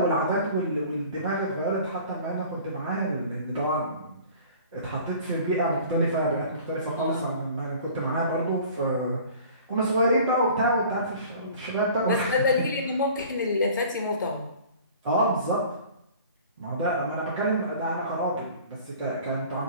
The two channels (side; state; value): both; inverted; correlation -0.46